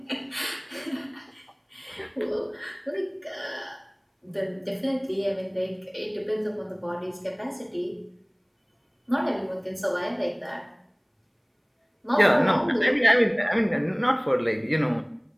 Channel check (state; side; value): identical; both; correlation 1.00